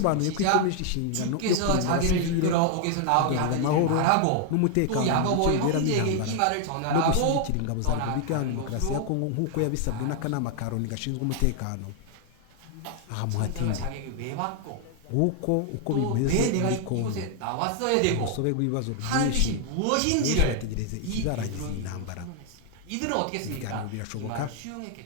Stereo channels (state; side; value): different; both; correlation 0.00